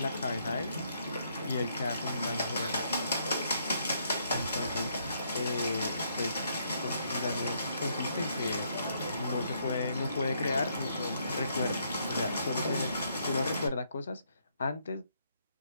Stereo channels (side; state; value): both; inverted; correlation -0.72